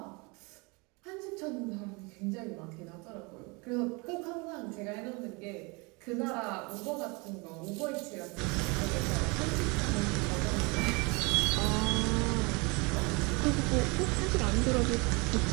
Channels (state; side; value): quieter; left; 28.6 dB